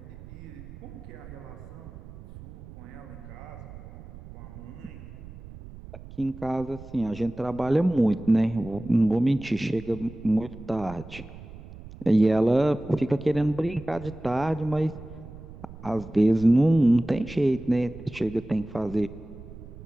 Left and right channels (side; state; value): right; noise; rumble, 16 dB below the sound